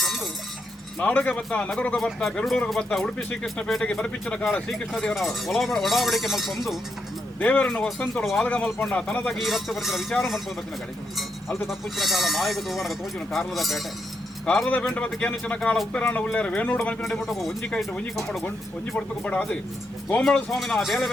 ನಾಡುಗೆ ಬತ್ತ ನಗರಗೆ ಬತ್ತ ಬೆರಡೂರಿಗೆ ಬತ್ತ ಉಡುಪಿ ಶ್ರೀಕೃಷ್ಣ ಪೇಟೆಗೆ ಬರಪಿಚ್ಚಿನ ಕಾಲ ಶ್ರೀಕೃಷ್ಣ ದೇವರ ಒಡಾವಡಿಕೆ ಮಲ್ಪೊಂದು ದೇವರನ್ನು ವಸಂತೋಡು ವಾಲಗ ಮಲ್ಪೊಂಡ ತನದಾಗಿ ಈ ರಕ್ತ ಬರ್ತಿನ ವಿಚಾರ ಮಲ್ಪೊಂದು ಬತ್ತಿನ ಗಳಿಗೆ ಅಲ್ದು ತಪ್ಪುಚ್ಚಿನ ಕಾಲ ಮಾಯಗ ದೋವನಗ ತೋಚಿನ ಕಾರ್ಲದ ಪೇಟೆ ಕಾರದ ಪೇಂಟ ಬತ್ತ ಕೇನಿಚಿನ ಕಾಲ ಉಪ್ಪಿರಾಣ ಉಳ್ಳೇರ ವೇಣೂಡು ಮಲ್ಪಿನ ಮುಟ್ಟಕ ಒಂಜಿ ಕೈಟು ಒಂಜಿ ಕಮ್ಮಡು ಒಂಜಿ ಪಡ್ತುಕು ಬಡ ಅದು ಗೋಮಳ ಸ್ವಾಮಿನ ಬೇಲೆ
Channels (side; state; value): both; normal; correlation 0.81